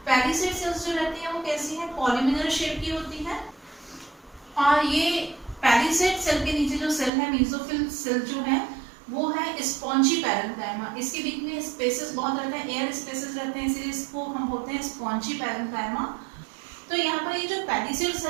पैलिसेड सेल्स जो रहती है वो कैसी है? पॉलीमिनल शेप की होती है। और ये पैलिसेड सेल के नीचे जो सेल है, मीसोफिल सेल जो है, वो है स्पॉन्जी पैरेन्काइमा। इसके बीच में स्पेसेस बहुत रहते हैं, एयर स्पेसेस रहते हैं, इसलिए इसको हम बोलते हैं स्पॉन्जी पैरेन्काइमा। तो यहाँ पर ये जो पैलिसेड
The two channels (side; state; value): left; drops out; at 7.1 s